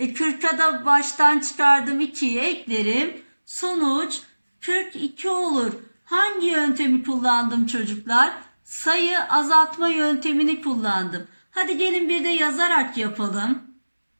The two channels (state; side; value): inverted; both; correlation -1.00